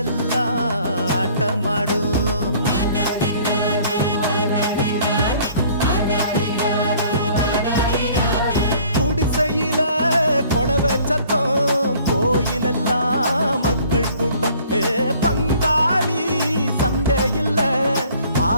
ஆட்டமாடும் குடிசையில கொளவை சத்தம் கோயிலெல்லாம் மக்கள் கூட்டம் பங்காளி சண்டை இல்ல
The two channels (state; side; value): inverted; both; correlation -0.55